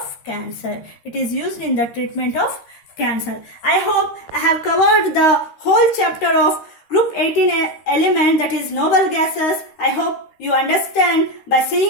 cancer. It is used in the treatment of cancer. I hope I have covered the whole chapter of group 18 element, that is noble gases. I hope you understand by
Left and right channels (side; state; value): right; late; 13 ms